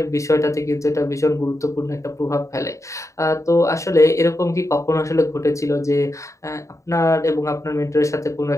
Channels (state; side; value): late; right; 0.15 ms